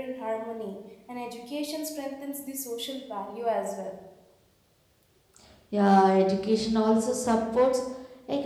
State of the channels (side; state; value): both; identical; correlation 1.00